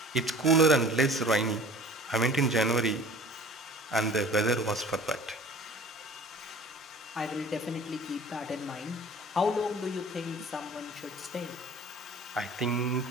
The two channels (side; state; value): both; normal; correlation 0.45